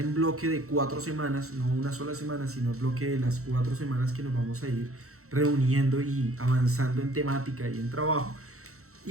bloque de 4 semanas, no una sola semana, sino el bloque de las 4 semanas que nos vamos a ir reuniendo y avanzando en temática y en trabajo,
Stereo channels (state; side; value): late; left; 0.64 ms